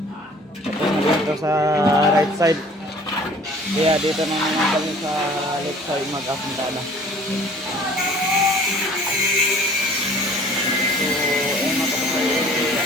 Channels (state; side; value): normal; both; correlation 0.51